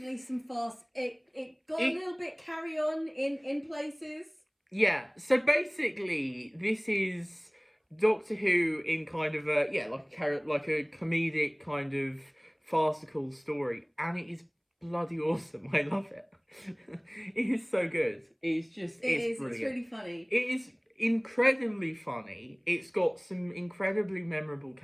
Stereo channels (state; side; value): identical; both; correlation 1.00